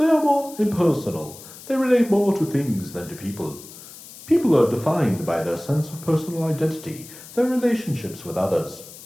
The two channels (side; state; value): left; noise; hiss, 17 dB below the sound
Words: are more impersonal. They relate more to things than to people. People are defined by their sense of personal identity, their relationships with others.